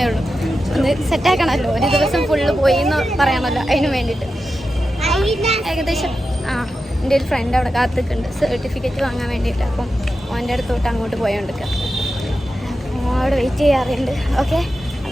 ഉള്ളൂ. ഒന്ന് സെറ്റാക്കണമല്ലോ, ഒരു ദിവസം ഫുള്ള് പോയി എന്ന് പറയണമല്ലോ, അതിന് വേണ്ടിയിട്ട്. ഏകദേശം എൻ്റെ ഒരു ഫ്രണ്ട് അവിടെ കാത്തിക്കുന്നുണ്ട് സർട്ടിഫിക്കറ്റ് വാങ്ങാൻ വേണ്ടിയിട്ട്. അപ്പം അവൻ്റെ അടുത്തോട്ട് അങ്ങോട്ട് പോയോണ്ടിരിക്കുക, അപ്പോൾ അവിടെ വെയിറ്റ് ചെയ്യാറുണ്ട്. ഓക്കെ,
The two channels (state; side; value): normal; both; correlation 0.90